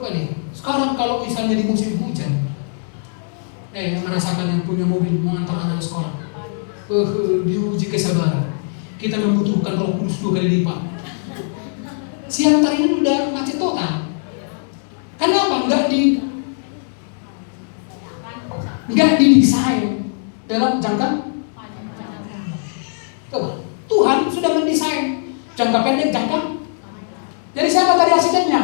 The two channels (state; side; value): silent; right; digital silence